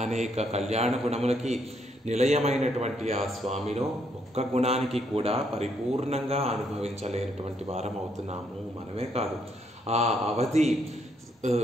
అనేక కళ్యాణ గుణములకి నిలయమైనటువంటి ఆ స్వామిలో ఒక్క గుణానికి కూడా పరిపూర్ణంగా అనుభవించలేనటువంటి వారం అవుతున్నాము. మనమే కాదు, ఆ అవధి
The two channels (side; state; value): both; normal; correlation 0.73